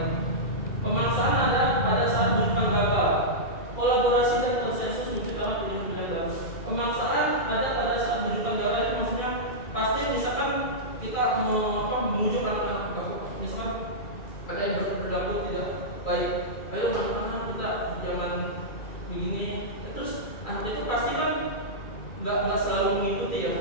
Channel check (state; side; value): late; right; 2.4 ms